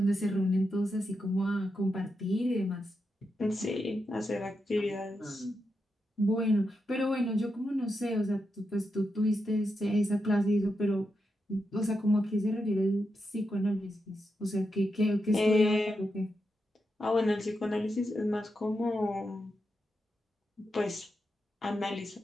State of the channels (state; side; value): normal; both; correlation 0.86